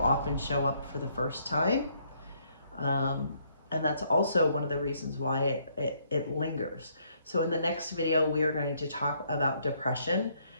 show up for the first time. And that's also one of the reasons why it lingers. So in the next video, we are going to talk about depression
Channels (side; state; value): both; inverted; correlation -0.69